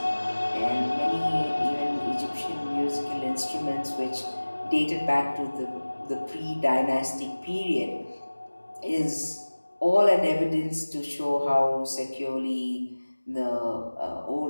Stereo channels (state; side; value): inverted; both; correlation -1.00